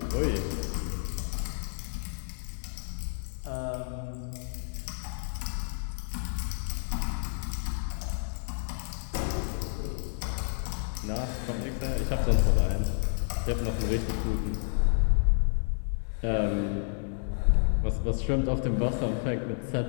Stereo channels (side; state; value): right; silent; digital silence